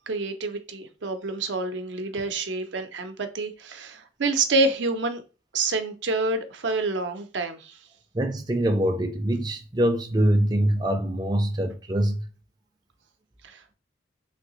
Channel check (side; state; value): both; normal; correlation 0.49